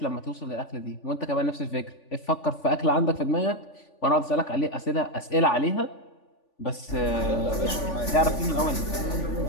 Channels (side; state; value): right; late; 3.5 ms